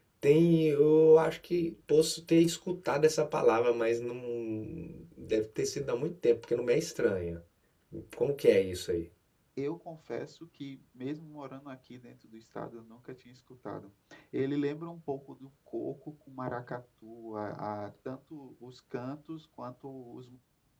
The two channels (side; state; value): both; identical; correlation 1.00